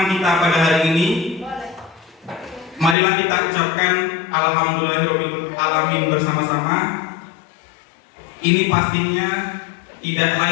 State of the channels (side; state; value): right; drops out; at 3.0 s